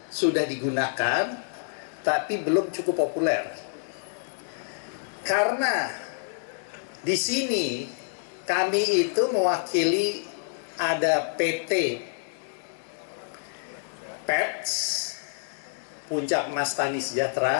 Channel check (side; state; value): right; silent; digital silence